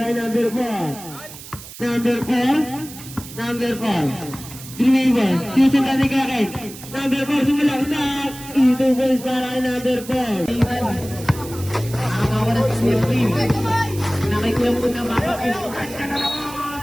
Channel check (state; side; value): noise; right; hiss, 15 dB below the sound